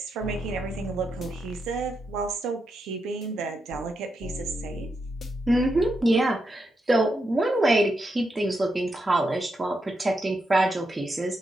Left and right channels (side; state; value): both; normal; correlation 0.84